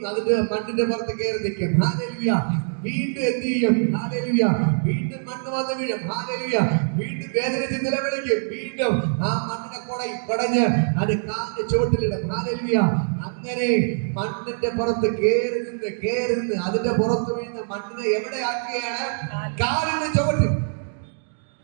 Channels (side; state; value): left; silent; digital silence